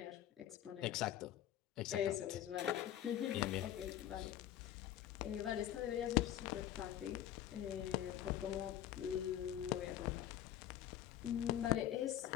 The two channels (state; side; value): quieter; right; 11.8 dB